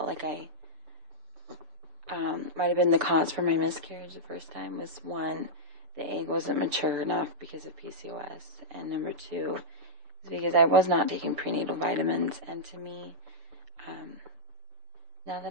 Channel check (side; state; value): left; late; 6.9 ms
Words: like I might have been the cause for my miscarriage the first time. Was one, the egg wasn't mature enough because of PCOS, and number two is because I was not taking prenatal vitamins. And to me, now